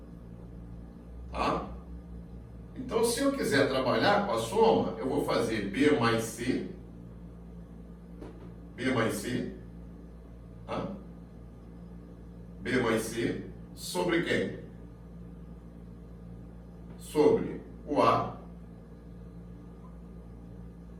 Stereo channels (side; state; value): both; identical; correlation 1.00